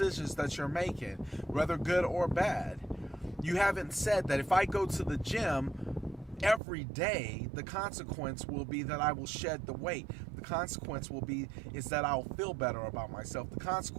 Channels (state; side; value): drops out; left; at 6.6 s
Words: that you're making, whether good or bad. You haven't said that if I go to the gym every day, the consequence will be that I will shed the weight. The consequence will be is that I'll feel better about myself. The